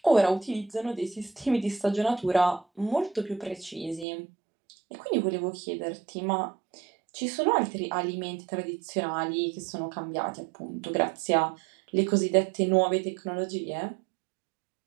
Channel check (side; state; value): left; drops out; at 4.0 s